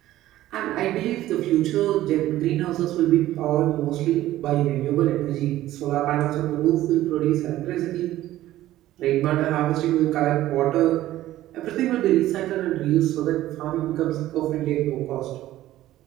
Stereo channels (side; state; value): left; quieter; 14.7 dB